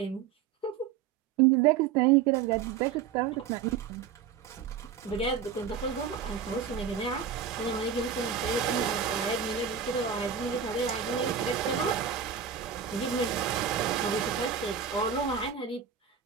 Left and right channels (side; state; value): left; quieter; 7.4 dB